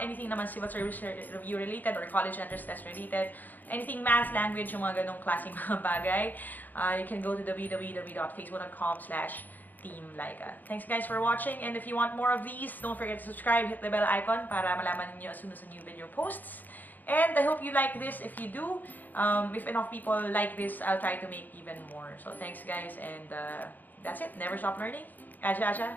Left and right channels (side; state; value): right; late; 0.085 ms